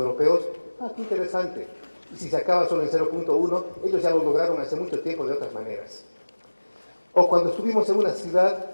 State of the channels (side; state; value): both; inverted; correlation -1.00